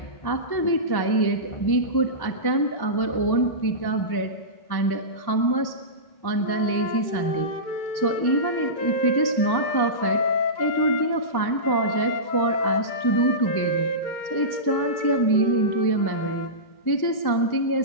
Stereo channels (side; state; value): right; late; 1.1 ms